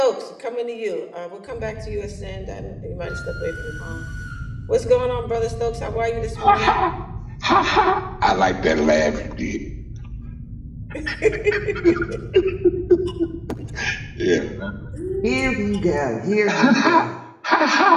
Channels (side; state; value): both; identical; correlation 1.00